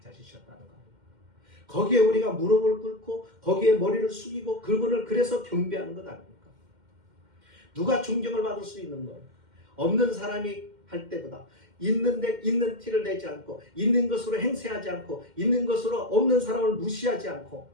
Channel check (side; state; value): left; late; 2.1 ms